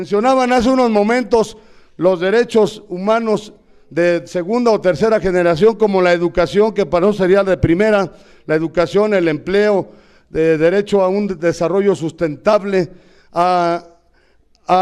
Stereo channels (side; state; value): both; identical; correlation 1.00